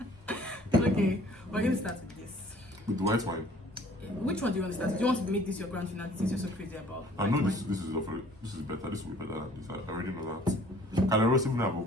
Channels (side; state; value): both; normal; correlation 0.54